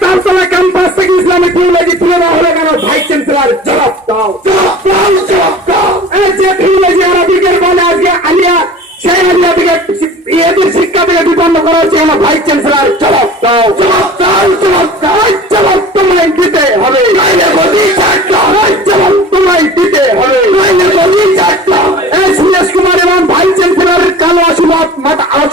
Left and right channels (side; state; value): both; normal; correlation 0.42